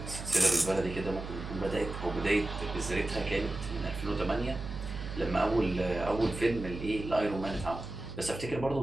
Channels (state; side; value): noise; right; hum, 8 dB below the sound